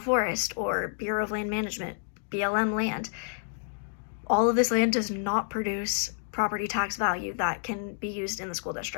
or Bureau of Land Management, BLM land. All of this land does not produce property tax value that can be used in the school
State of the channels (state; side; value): silent; right; digital silence